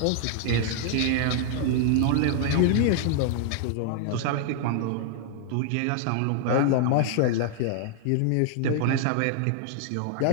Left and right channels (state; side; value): different; both; correlation -0.01